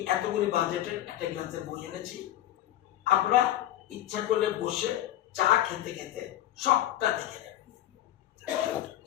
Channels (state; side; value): quieter; right; 13.3 dB